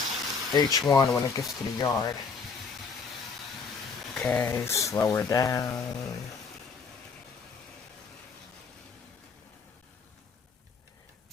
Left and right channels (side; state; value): right; quieter; 5.2 dB